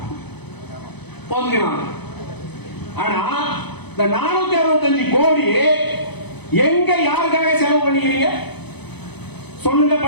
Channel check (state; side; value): late; right; 0.98 ms